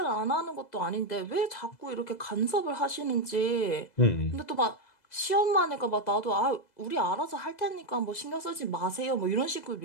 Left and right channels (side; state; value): right; late; 2.0 ms